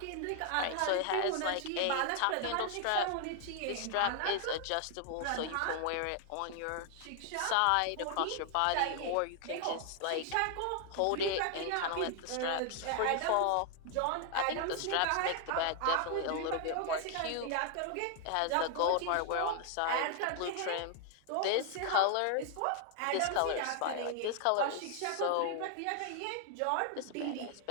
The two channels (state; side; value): different; both; correlation 0.00